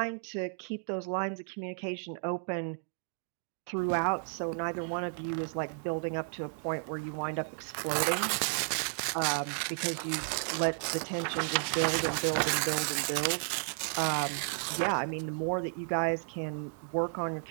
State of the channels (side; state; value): left; silent; 56 dB below the other